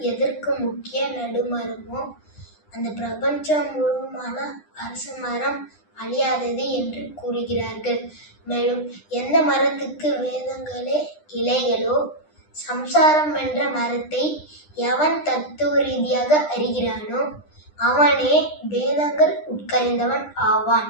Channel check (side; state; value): right; late; 9.9 ms